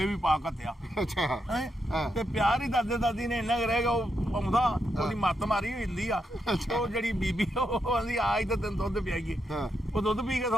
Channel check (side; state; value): both; normal; correlation 0.82